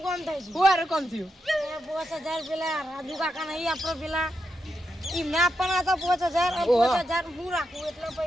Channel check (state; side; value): normal; both; correlation 0.85